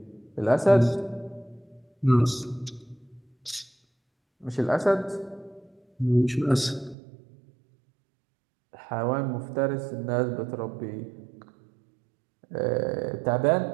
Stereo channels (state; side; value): drops out; left; at 7.0 s